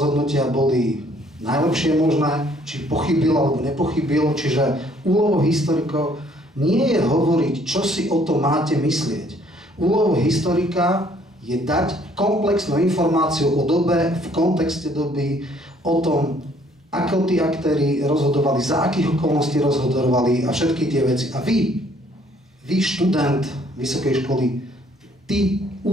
boli najlepšie možné, či pochybil alebo nepochybil, čiže úlohou historikov nie je hovoriť, čo si o tom máte myslieť. Úlohou historika je dať komplexnú informáciu o dobe, v kontexte doby, o tom, ako tí aktéri rozhodovali, za akých okolností rozhodovali a všetky tie veci. A vy študent vysokej školy, ty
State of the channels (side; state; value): both; normal; correlation 0.62